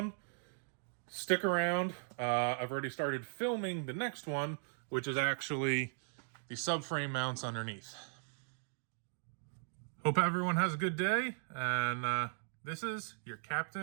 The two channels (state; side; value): silent; left; digital silence